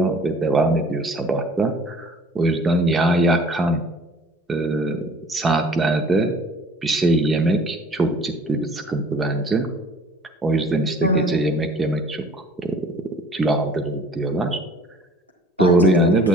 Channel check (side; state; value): both; normal; correlation 0.50